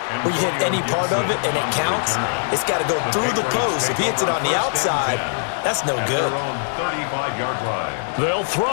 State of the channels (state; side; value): silent; right; 65 dB below the other